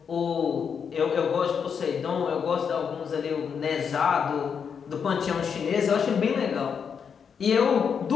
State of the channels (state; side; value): quieter; right; 6.8 dB